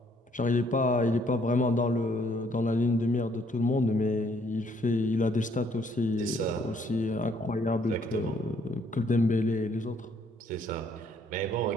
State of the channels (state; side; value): normal; both; correlation 0.66